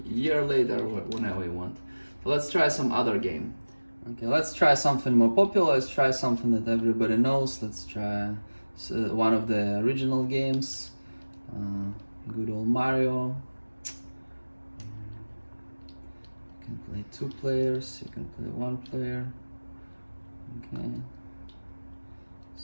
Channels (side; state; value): both; inverted; correlation -1.00